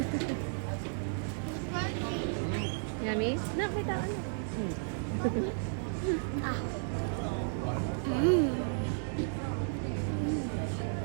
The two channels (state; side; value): silent; left; digital silence